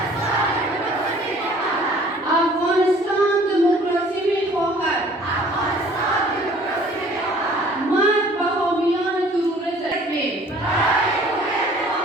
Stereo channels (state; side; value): normal; both; correlation 0.53